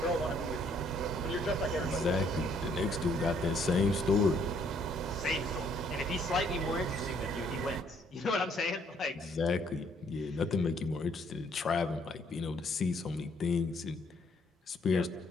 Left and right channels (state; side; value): normal; both; correlation 0.66